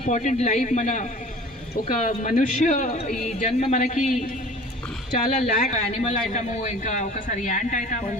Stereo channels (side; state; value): both; normal; correlation 0.44